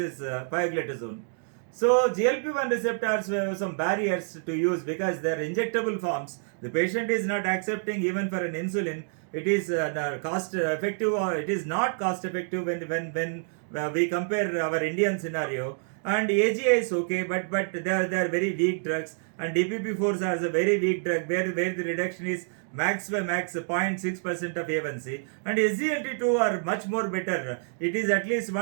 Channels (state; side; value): silent; left; 60 dB below the other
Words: pioglitazone. So GLP-1 receptors have some barriers to use because they are injectable forms. The patient is not accepting even for an insulin. It is cost effective, or it is not cost effective when we compare our Indian scenario. And AGI is okay, but they are very weak drugs, and DPP-4s are a very weak drug where the reduction is max 0.6% of A1C, and SGLT2 are much more better. It is at least